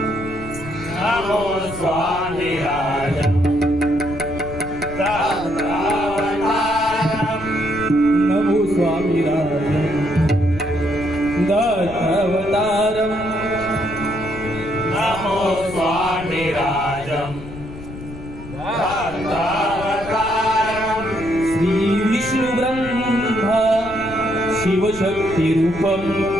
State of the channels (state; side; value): noise; left; rumble, 13 dB below the sound